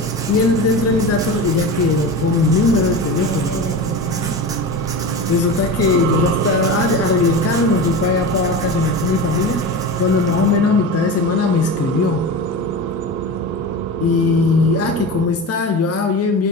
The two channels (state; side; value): normal; both; correlation 0.27